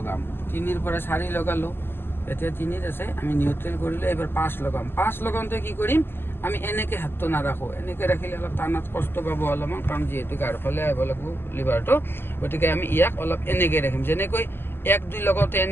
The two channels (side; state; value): right; late; 0.11 ms